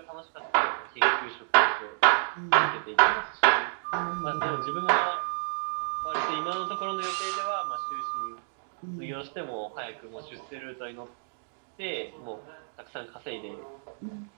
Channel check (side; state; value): left; silent; digital silence